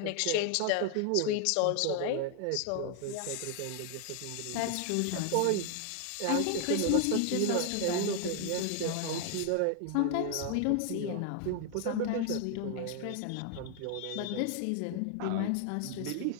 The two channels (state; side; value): different; both; correlation 0.00